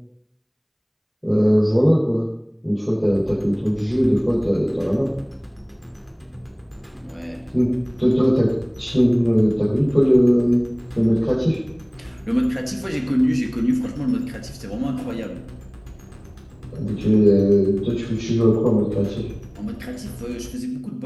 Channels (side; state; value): both; identical; correlation 1.00